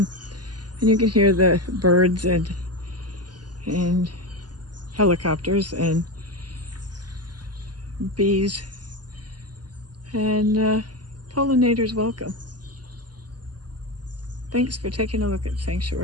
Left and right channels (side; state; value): left; late; 0.70 ms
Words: and you can hear the birds and helicopters and bees, and pollinators welcome. Thanks for taking a look at